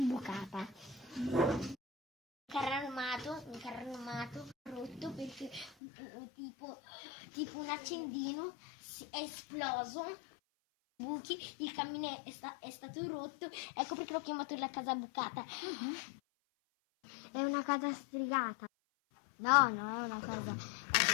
Un carro armato rotto perché tipo un accendino è esploso. Buchi, il camino è stato rotto, ecco perché l'ho chiamato la casa bucata. È una casa stregata. No, non è una casa,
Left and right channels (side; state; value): right; drops out; at 5.7 s